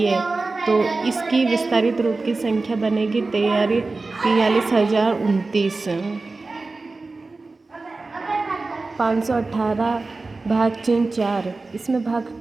तो इसकी विस्तारित रूप की संख्या बनेगी 43,029। 518 भाग चिन्ह 4, इसमें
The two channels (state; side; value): quieter; left; 3.6 dB